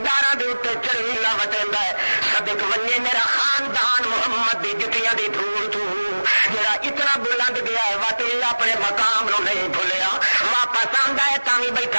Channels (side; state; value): both; inverted; correlation -1.00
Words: دے اوتے چڑھیلا وٹیندا ہے صدق ونجے میرا خاندان محمد دی جتیاں دی دھول تو جڑا اتنا بلند گیا ہے واقعی اپنے مقام نو نہیں بھولیا واپس آندا ہے تاں وی